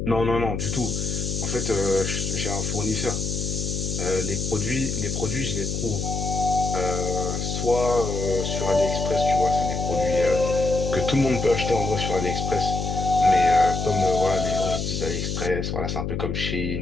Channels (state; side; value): noise; left; hum, 3 dB below the sound